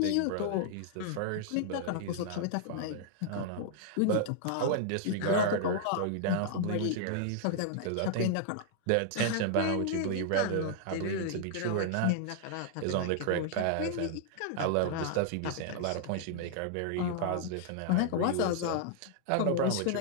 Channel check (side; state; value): both; different; correlation -0.01